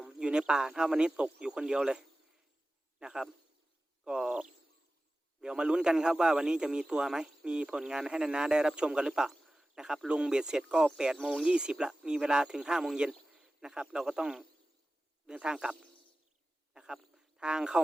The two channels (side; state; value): both; normal; correlation 0.96